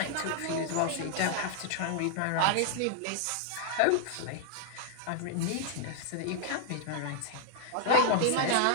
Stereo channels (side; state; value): both; different; correlation 0.00